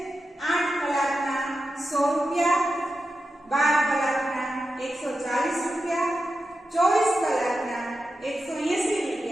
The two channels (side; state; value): both; normal; correlation 0.90